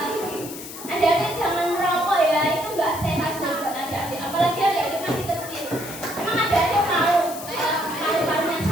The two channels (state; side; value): noise; left; hiss, 12 dB below the sound